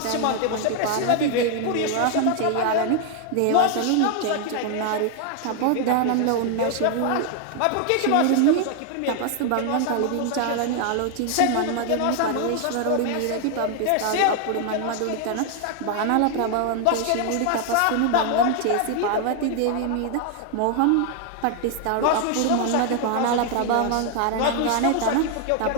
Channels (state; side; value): different; both; correlation 0.00